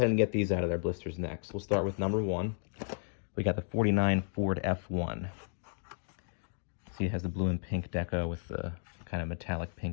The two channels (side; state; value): right; silent; digital silence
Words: and get these out of their blisters next. We'll start with number 1. We got the 49 Ford F1. See, it has the blue and pink deco with the kind of metallic